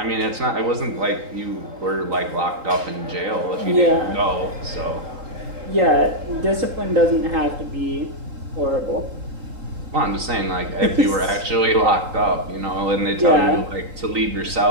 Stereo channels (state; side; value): late; left; 3.9 ms